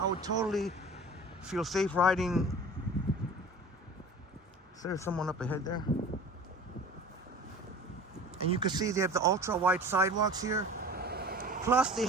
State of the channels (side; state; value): both; normal; correlation 0.40